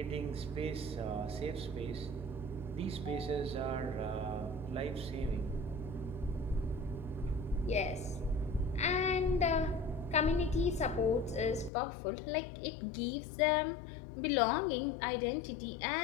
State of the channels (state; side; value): drops out; right; at 11.7 s